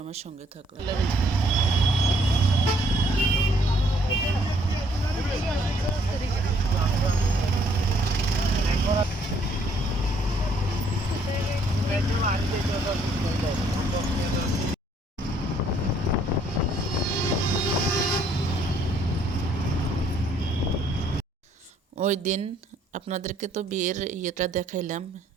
আমার সঙ্গে থাকুন। ওই দিন আপনাদেরকে তো বিয়ের ইয়েটা দেখাইলাম।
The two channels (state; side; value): normal; both; correlation 0.65